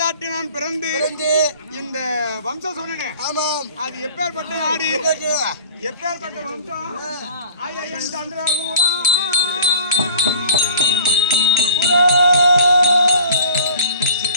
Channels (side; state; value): both; inverted; correlation -0.45